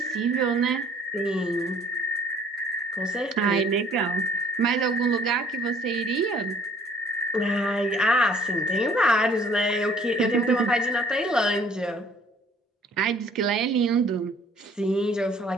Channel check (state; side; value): normal; both; correlation 0.56